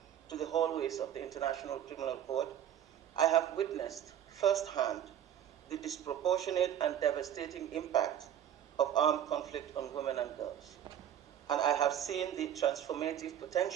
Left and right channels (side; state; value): left; quieter; 10.3 dB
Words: to the hallways of the International Criminal Court, I have witnessed firsthand the disproportionate and devastating impact of armed conflict on women and girls. And I have seen the transformative